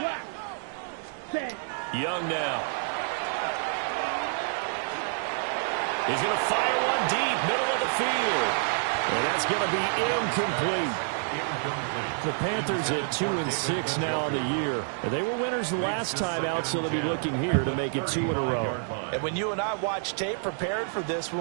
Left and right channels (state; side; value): silent; left; 59 dB below the other